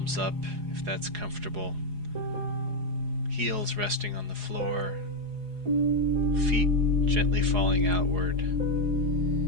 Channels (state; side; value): late; left; 4.8 ms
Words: up if that's comfortable, heels resting on the floor, feet gently falling outward.